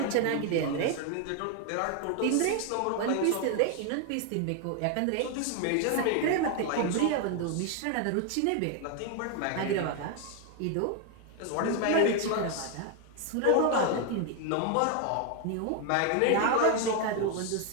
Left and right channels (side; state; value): both; different; correlation 0.01